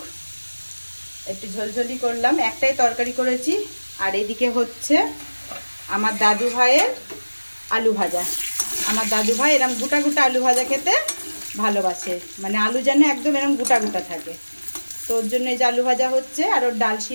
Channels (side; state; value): both; inverted; correlation -1.00